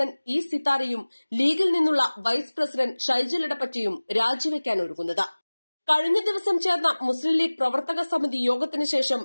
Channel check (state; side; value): inverted; both; correlation -1.00